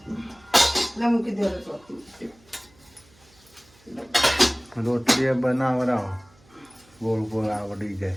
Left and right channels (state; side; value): noise; right; hum, 30 dB below the sound